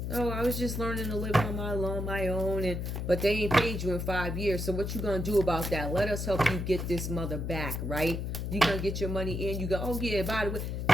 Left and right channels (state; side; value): noise; left; hum, 3 dB below the sound